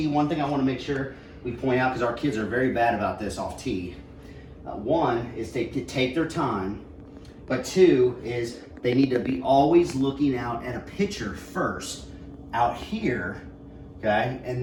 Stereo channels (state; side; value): identical; both; correlation 1.00